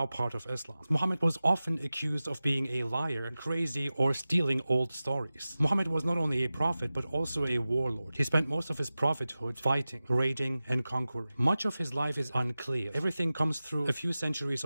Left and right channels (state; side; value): inverted; both; correlation -0.95